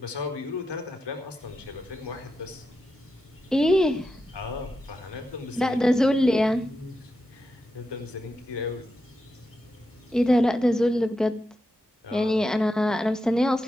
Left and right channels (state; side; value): normal; both; correlation 0.87